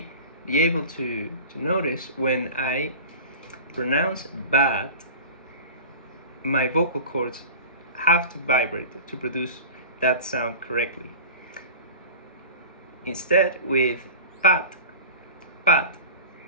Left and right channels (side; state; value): both; inverted; correlation -0.35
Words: be able to notice, when I pronounce bat, my vocal cords have to vibrate to produce that sound correctly. Instead, with pat, pat,